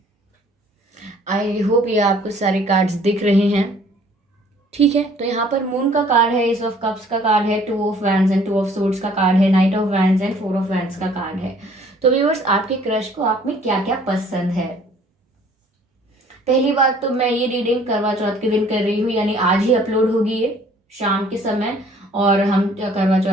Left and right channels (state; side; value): normal; both; correlation 0.56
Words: I hope ये आपको सारे cards दिख रहे हैं। ठीक है, तो यहाँ पर मून का कार्ड है, एस ऑफ कप्स का कार्ड है, two of wands and two of swords का कार्ड है, night of wands and four of wands का कार्ड है। तो व्यूअर्स, आपके क्रश को आप में क्या क्या पसंद है? पहली बात तो मैं ये रीडिंग करवा चौथ के दिन कर रही हूँ, यानी आज ही अपलोड होगी ये शाम के समय। और हम करवा